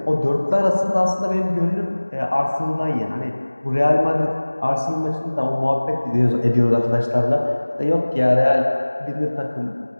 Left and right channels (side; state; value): both; inverted; correlation -1.00